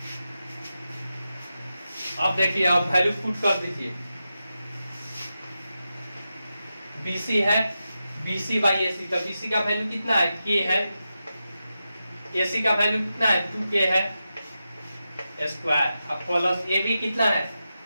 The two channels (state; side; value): inverted; both; correlation -0.90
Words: अब देखिए अब वैल्यू पुट कर दीजिए, BC है BC बाई AC, तो BC का वैल्यू कितना है K है, AC का वैल्यू कितना है 2K है स्क्वायर, अब प्लस AB कितना है